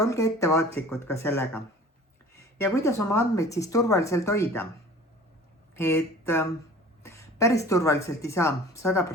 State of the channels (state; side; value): normal; both; correlation 0.44